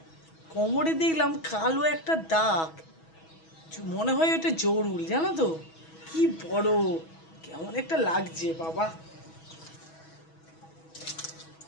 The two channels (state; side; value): late; right; 6.2 ms